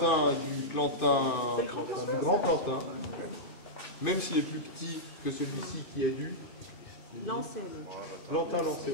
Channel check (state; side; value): late; right; 2.5 ms